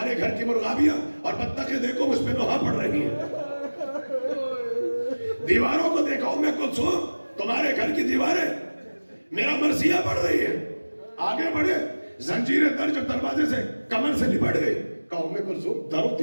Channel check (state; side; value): inverted; both; correlation -1.00